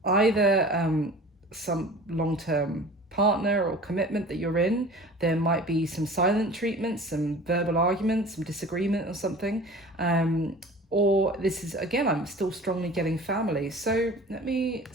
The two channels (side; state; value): both; normal; correlation 0.41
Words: either some long-term partner or commitment that you're in. There might be some silent treatment, some verbal arguments, some disagreement or something. Or this is, again, I'm still strongly getting family. So let me